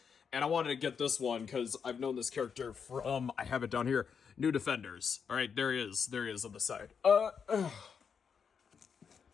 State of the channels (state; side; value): quieter; right; 6.6 dB